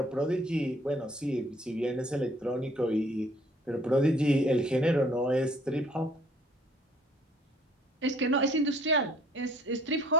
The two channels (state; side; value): normal; both; correlation 0.59